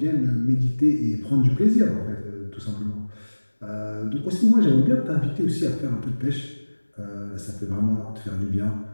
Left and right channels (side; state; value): both; inverted; correlation -1.00